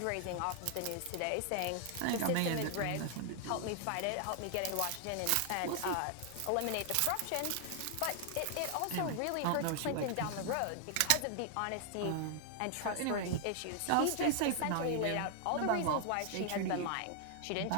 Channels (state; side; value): different; both; correlation 0.00